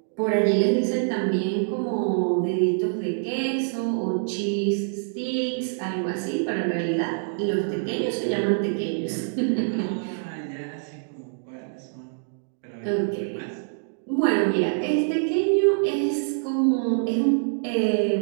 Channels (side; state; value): left; silent; digital silence